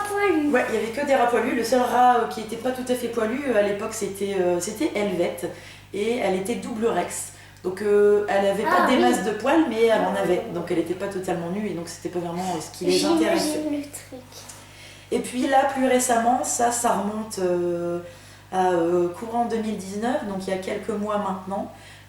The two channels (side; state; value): both; identical; correlation 1.00